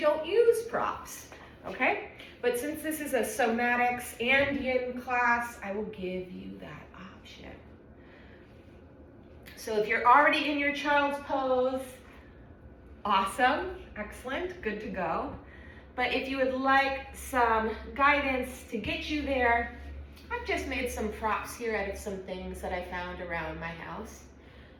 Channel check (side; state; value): both; identical; correlation 1.00